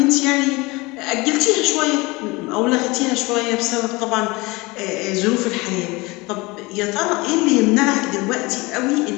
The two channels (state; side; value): quieter; right; 23.8 dB